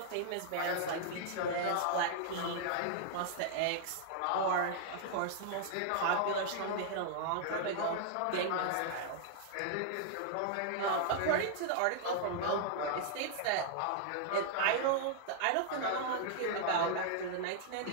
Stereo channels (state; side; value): different; both; correlation -0.01